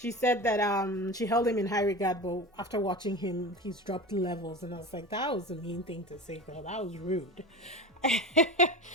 said that she held him in high regard, but after watching him, he's dropped levels, and I was like, that was a mean thing to say, girl. That was rude.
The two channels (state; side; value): normal; both; correlation 0.30